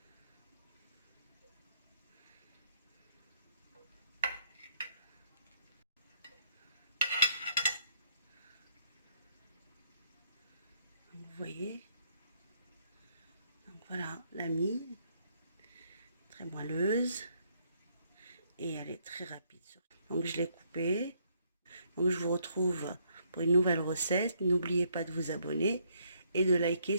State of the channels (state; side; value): inverted; both; correlation -0.69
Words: Donc, vous voyez. Donc voilà la mie, très moelleuse. et elle est très rapide. Donc je l'ai coupé. Donc je vous retrouve pour une nouvelle recette. N'oubliez pas de vous abonner et de liker